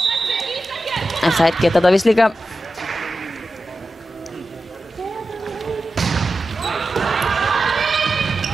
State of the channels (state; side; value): normal; both; correlation 0.92